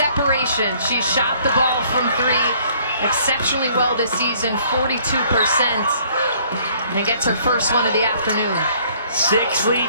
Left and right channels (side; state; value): both; inverted; correlation -0.60